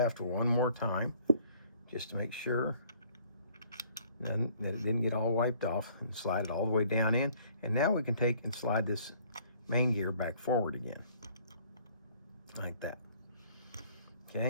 one more time just to make sure that it didn't get all wiped off, and slide it all the way down in. And now we can take and slide this main gear back forward again like that.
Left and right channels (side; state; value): both; inverted; correlation -0.58